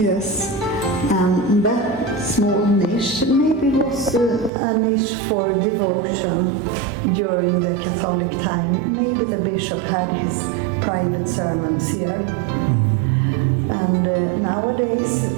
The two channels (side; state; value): left; drops out; at 4.5 s